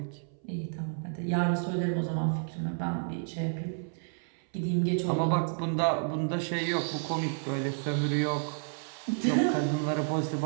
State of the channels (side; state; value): left; silent; 57 dB below the other